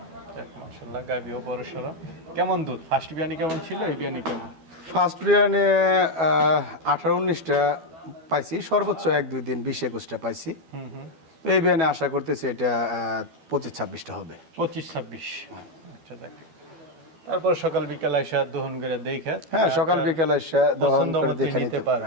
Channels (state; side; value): late; left; 12 ms